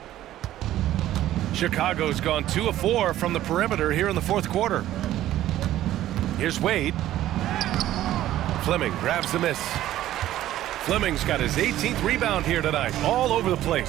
Chicago's gone 2 of 4 from the perimeter here in the fourth quarter. Here's Wade. Fleming grabs the miss. Fleming's got his 18th rebound here tonight, all over the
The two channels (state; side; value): quieter; left; 13.6 dB